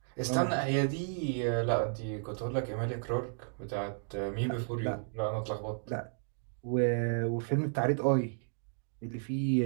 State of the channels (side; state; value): left; silent; digital silence